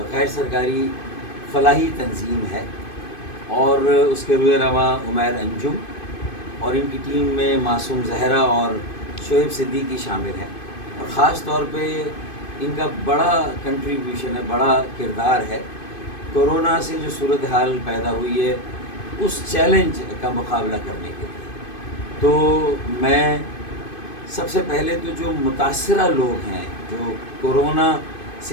غیر سرکاری فلاحی تنظیم ہے، اور اس کے روح رواں عمیر انجم اور ان کی ٹیم میں معصوم زہرا اور شعیب صدیقی شامل ہیں، اور خاص طور پہ ان کا بڑا کنٹریبیوشن ہے، بڑا کردار ہے کورونا سے جو صورتحال پیدا ہوئی ہے اس چیلنج کا مقابلہ کرنے کے لیے۔ تو میں سب سے پہلے تو جو متاثرہ لوگ ہیں، جو کورونا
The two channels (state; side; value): late; right; 2.5 ms